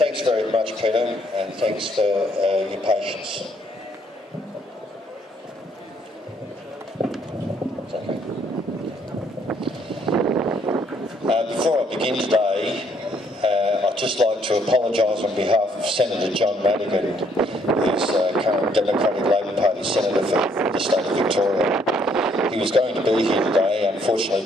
very much, Peter, and thanks for your patience. Before I begin today, I'd just like to apologise on behalf of Senator John Madigan, who's current Democratic Labor Party Senator for the state of Victoria. He was going to be here today.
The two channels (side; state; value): both; normal; correlation 0.67